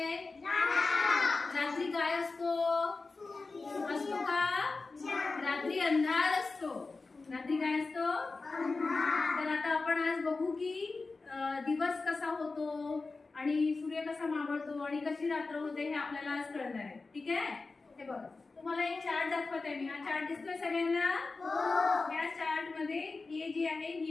रात्री काय असतो? असतो का? रात्री अंधार असतो. रात्री काय असतो? तर आता आपण आज बघू की दिवस कसा होतो आणि सूर्य कसा मावळतो आणि कशी रात्र होते हे आपल्याला आज कळणार आहे. ठीक आहे? हे बघा, तुम्हाला एक चार्ट दाखवत आहे मी. हा चार्ट दिसतोय सगळ्यांना? या चार्ट मध्ये ही जी आहे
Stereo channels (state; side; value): quieter; right; 3.8 dB